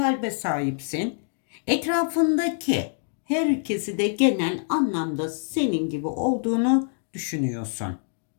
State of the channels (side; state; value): right; silent; digital silence